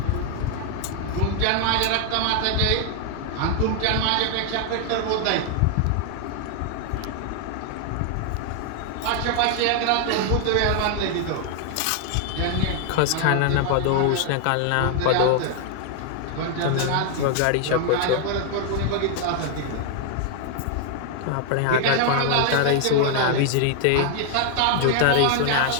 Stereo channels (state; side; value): different; both; correlation 0.00